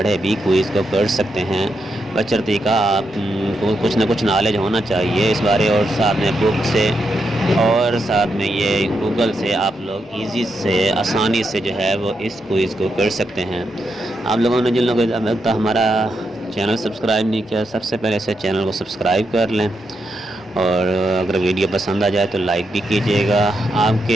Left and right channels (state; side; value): normal; both; correlation 0.83